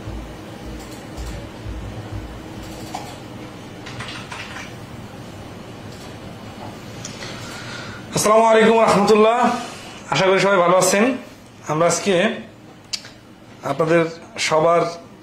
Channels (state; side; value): identical; both; correlation 1.00